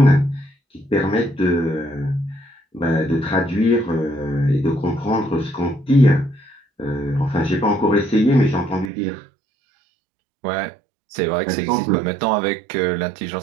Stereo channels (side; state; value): left; drops out; at 8.9 s